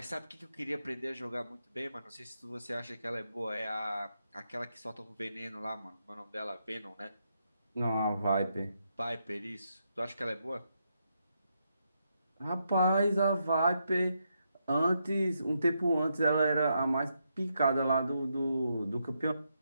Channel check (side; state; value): both; inverted; correlation -0.81